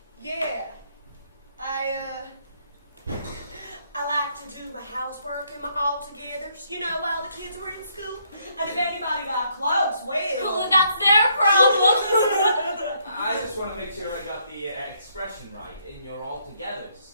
Yeah, I like to do my housework and my all-togethers, you know, while the kids were in school. And if anybody got close, well... Well, that's their problem. I just want to make sure I got the expression right in your all-togethers.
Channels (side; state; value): both; inverted; correlation -0.71